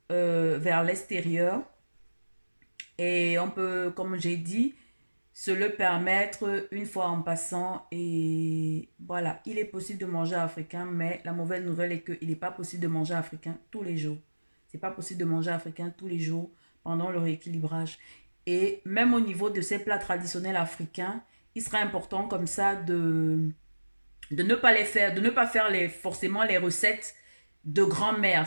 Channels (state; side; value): inverted; both; correlation -1.00